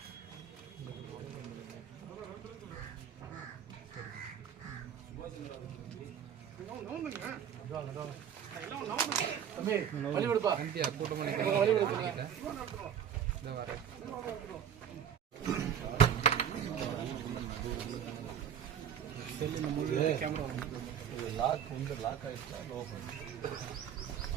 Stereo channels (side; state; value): left; quieter; 8.8 dB